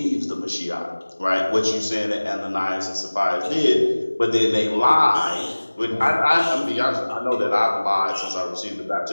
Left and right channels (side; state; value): both; inverted; correlation -1.00